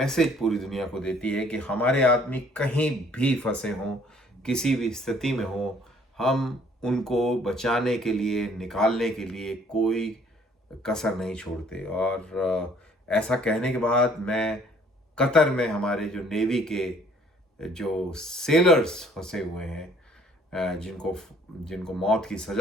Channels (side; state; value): both; normal; correlation 0.59